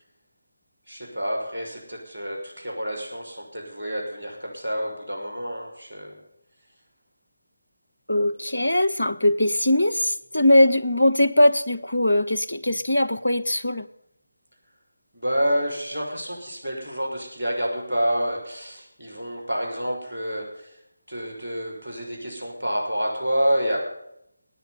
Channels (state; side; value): inverted; both; correlation -0.92